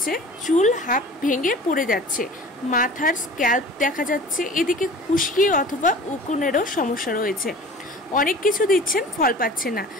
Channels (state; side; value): normal; both; correlation 0.42